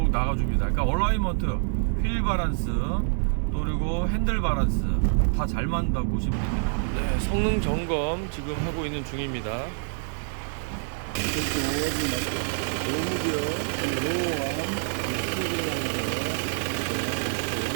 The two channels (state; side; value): silent; left; 61 dB below the other